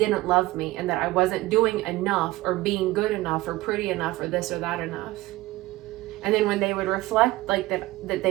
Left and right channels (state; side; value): quieter; left; 18.6 dB